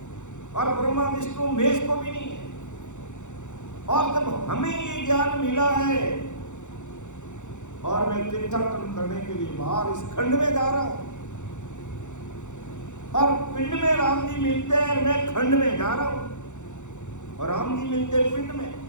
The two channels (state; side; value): late; right; 0.85 ms